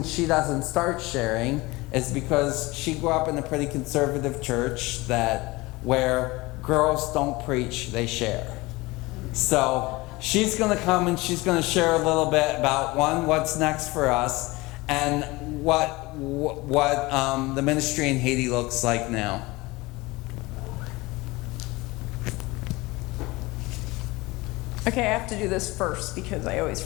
she doesn't start sharing is because she grew up in a pretty conservative church where girls don't preach, they share. So she's going to come and she's going to share a little bit about, one, what's next for us, and what the ministry in Haiti looks like now. Okay, I have to do this first because I always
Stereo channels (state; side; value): quieter; right; 22.0 dB